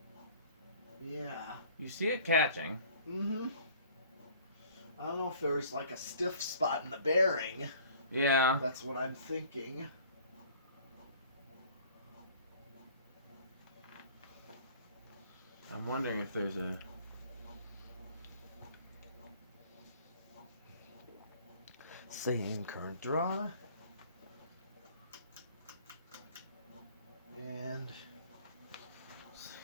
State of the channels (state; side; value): inverted; both; correlation -0.52